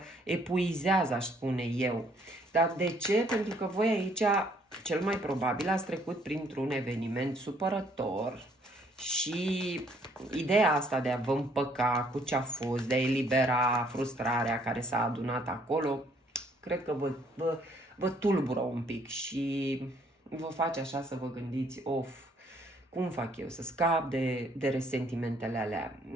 epuizează, aș spune eu. Dar de ce? Pentru că voi aici, cel mai probabil, ați trecut printr-un eveniment supărător și ideea asta de a vă împăca cu ce a fost, de a elibera frustrarea care s-a adunat acolo, cred că vă tulbură un pic și vă face așa să vă gândiți, cum fac eu să scap de resentimentele alea?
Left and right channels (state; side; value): normal; both; correlation 0.65